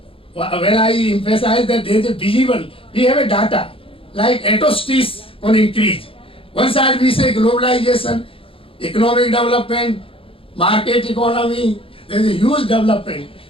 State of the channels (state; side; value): late; right; 0.26 ms